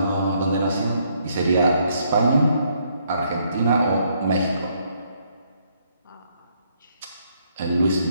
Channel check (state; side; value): inverted; both; correlation -0.71